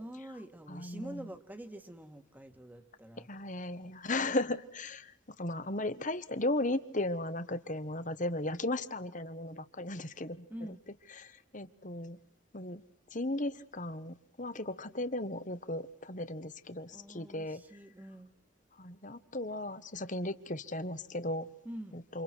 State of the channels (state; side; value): normal; both; correlation 0.26